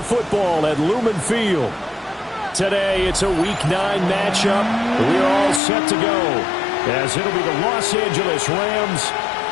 football at Lumen Field. Today, it's a Week 9 matchup. We're all set to go, as it'll be the Los Angeles Rams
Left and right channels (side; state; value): right; drops out; at 5.6 s